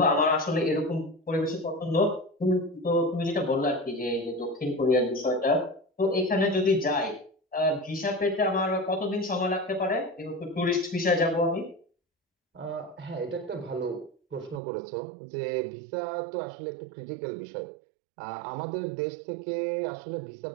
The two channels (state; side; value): drops out; left; at 14.6 s